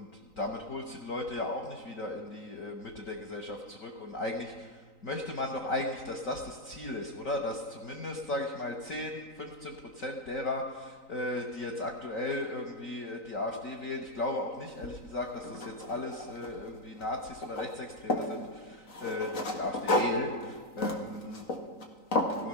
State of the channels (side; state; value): right; late; 3.9 ms